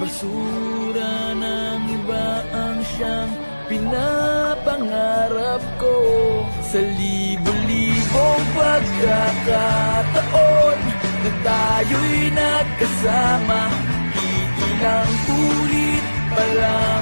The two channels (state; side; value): inverted; both; correlation -1.00